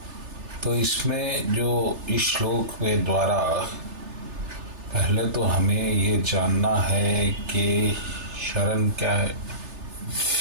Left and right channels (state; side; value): late; left; 3.3 ms